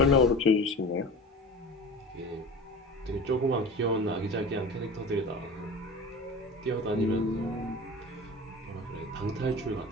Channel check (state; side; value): normal; both; correlation 0.34